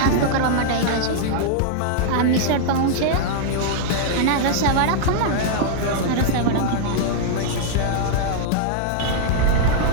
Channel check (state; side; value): different; both; correlation -0.01